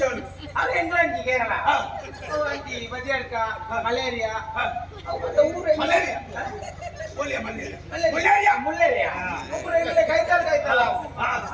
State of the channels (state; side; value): identical; both; correlation 1.00